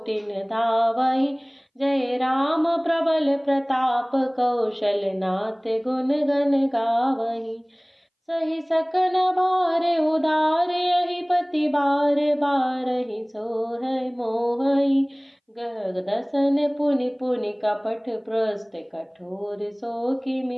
धावहि। जय राम प्रबल प्रताप, कौशल नाथ गुण गण गावहि। सही सकन भार उदार, यहि पति बार बारहि सोहै मोहै। गह दसन पुनि पुनि कपट, प्रस्थ कठोर सो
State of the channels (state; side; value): identical; both; correlation 1.00